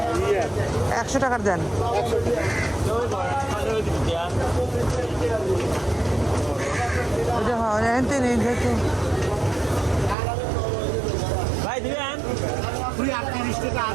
100 টাকার দেন। ওটা হয় এনতে নেই যেহেতু। ভাই দিবেন 38 টাকা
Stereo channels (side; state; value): left; drops out; at 10.2 s